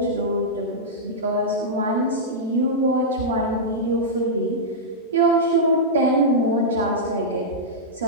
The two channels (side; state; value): both; normal; correlation -0.09